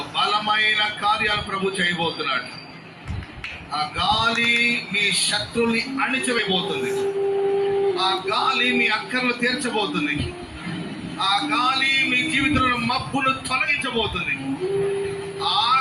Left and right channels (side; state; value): both; identical; correlation 1.00